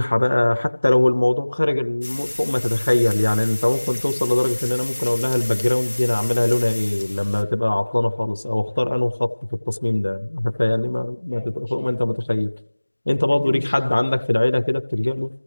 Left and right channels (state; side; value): inverted; both; correlation -1.00